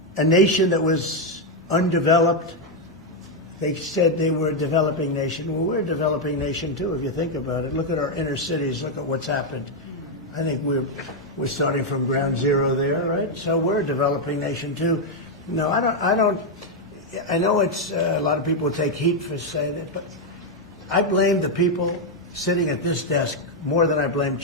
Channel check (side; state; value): both; normal; correlation 0.02